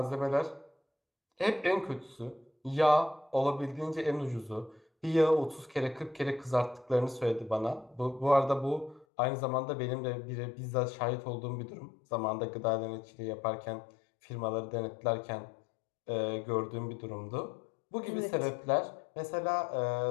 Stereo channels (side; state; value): right; drops out; at 9.1 s